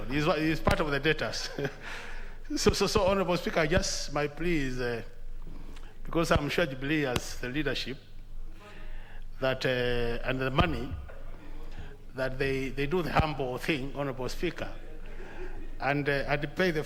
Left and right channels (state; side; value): identical; both; correlation 1.00